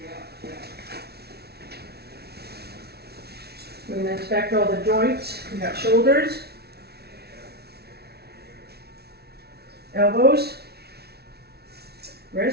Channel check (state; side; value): late; left; 0.47 ms